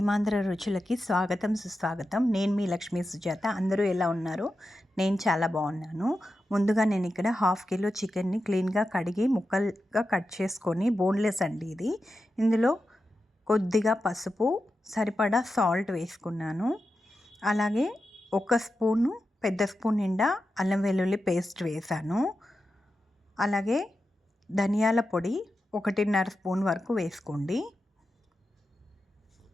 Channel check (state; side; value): normal; both; correlation 0.90